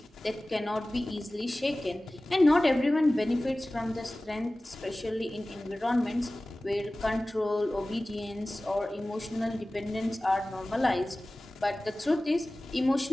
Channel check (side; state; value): both; normal; correlation 0.97